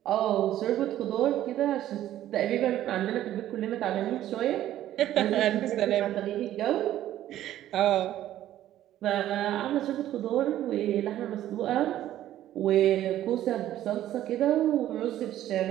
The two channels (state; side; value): quieter; left; 12.8 dB